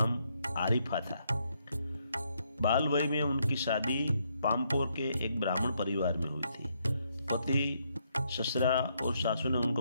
आरिफा था। बाल वय में उनकी शादी पामपोर के एक ब्राह्मण परिवार में हुई थी। पति, ससुरा और सासू ने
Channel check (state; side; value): inverted; both; correlation -0.75